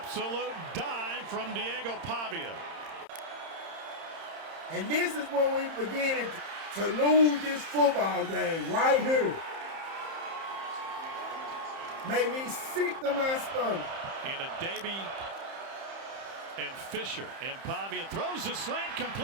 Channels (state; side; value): late; left; 30 ms